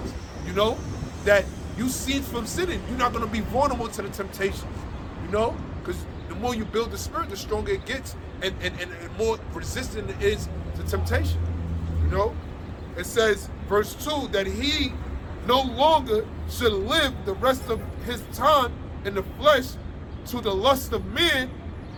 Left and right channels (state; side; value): identical; both; correlation 1.00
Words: you know, that you cease from sinning. You're not going to be vulnerable to the temptations, you know, because the more you build the spirit, the stronger it gets and more resistant it is to temptation, you know. It says, verse 2, that he no longer should live the rest of his time in the flesh to the lust of men,